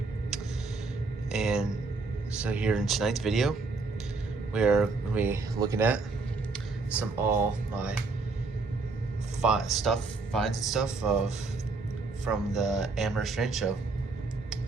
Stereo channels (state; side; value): quieter; left; 3.9 dB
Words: And so here in tonight's video, we're going to be looking at all my finds and stuff from the Amherst Railway Show.